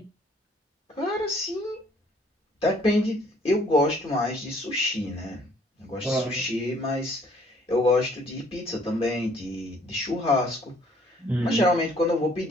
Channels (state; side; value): normal; both; correlation 0.60